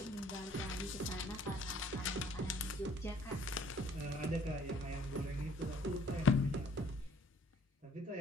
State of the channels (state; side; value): normal; both; correlation 0.59